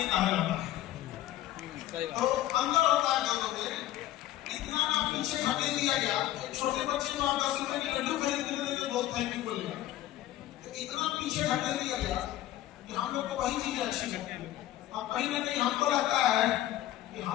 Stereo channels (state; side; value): quieter; right; 14.1 dB